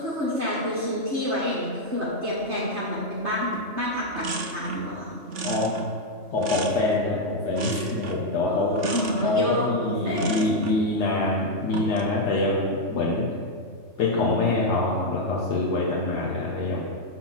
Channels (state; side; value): late; left; 3.5 ms